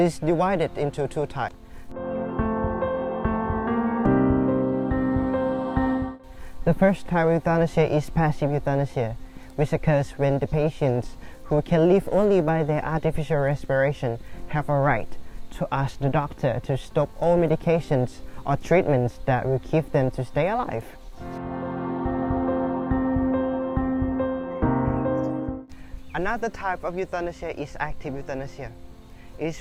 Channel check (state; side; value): identical; both; correlation 1.00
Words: divided into two types. The first type of euthanasia is passive euthanasia, which occurs when the patients who can live only by their artificial respiration have a right to ask the doctor to stop all medications or treatments that will keep them to stay alive. Another type of euthanasia is active euthanasia. It